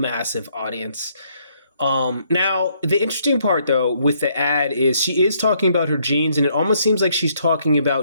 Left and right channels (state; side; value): inverted; both; correlation -0.70